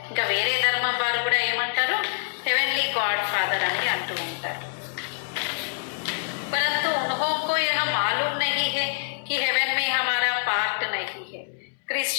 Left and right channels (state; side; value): silent; right; 61 dB below the other